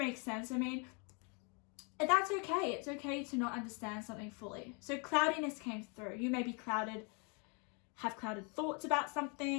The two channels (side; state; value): right; quieter; 34.9 dB